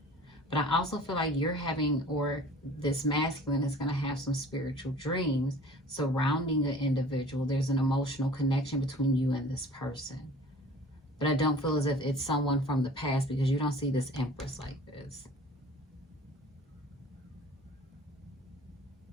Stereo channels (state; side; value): normal; both; correlation 0.46